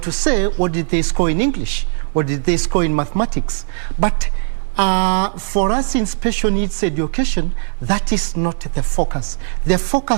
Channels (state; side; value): silent; left; digital silence